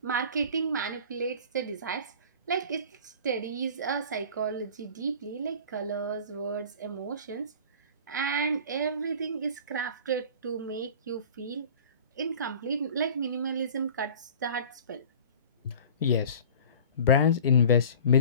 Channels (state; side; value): inverted; both; correlation -0.42